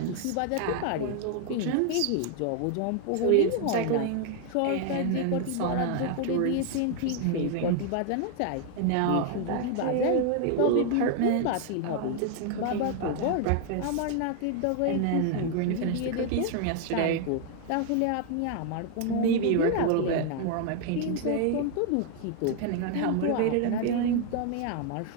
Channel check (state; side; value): different; both; correlation 0.00